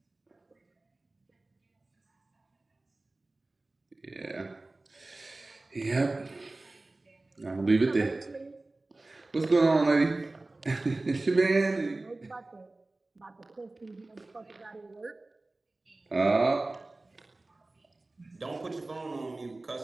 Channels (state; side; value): quieter; left; 3.0 dB